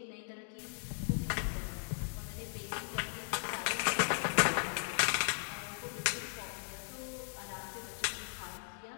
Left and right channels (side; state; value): right; silent; digital silence